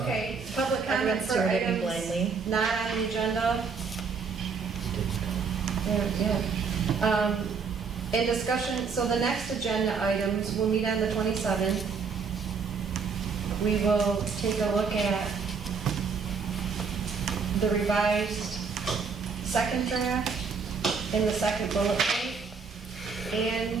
Okay, public comment Everyone's for staring at me items blindly. not on the agenda. Yeah. In discussion, so the next agenda items, we'll meet on the 27th. We will take a look at the revised second draft in the second bullet point.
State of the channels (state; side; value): quieter; left; 5.4 dB